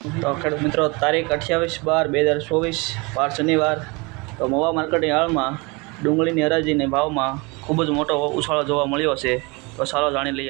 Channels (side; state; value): left; quieter; 27.5 dB